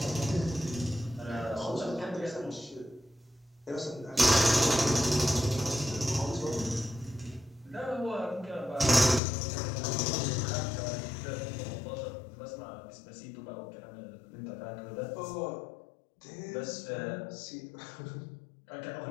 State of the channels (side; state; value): right; drops out; at 9.2 s